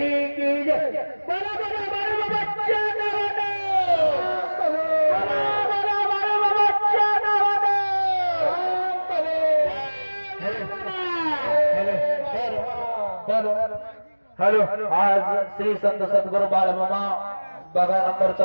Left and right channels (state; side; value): inverted; both; correlation -1.00